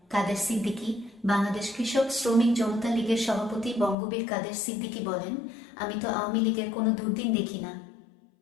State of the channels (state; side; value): drops out; right; at 4.0 s